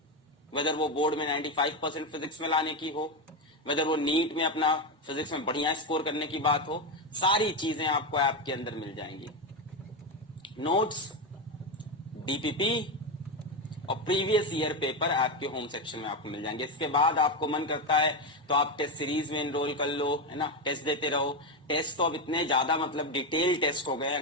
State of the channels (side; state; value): both; normal; correlation 0.11